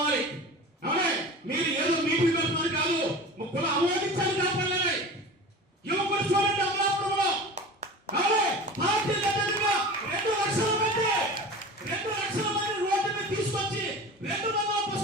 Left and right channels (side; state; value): both; normal; correlation 0.35